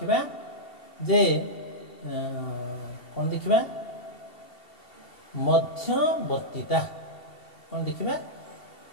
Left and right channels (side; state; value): right; late; 2.7 ms